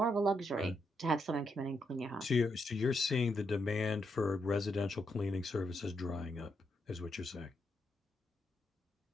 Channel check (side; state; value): both; normal; correlation 0.80